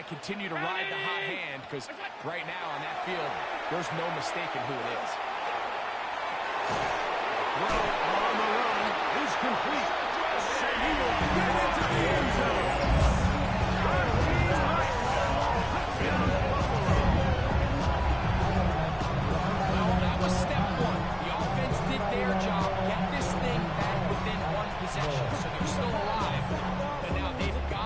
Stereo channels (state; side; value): identical; both; correlation 1.00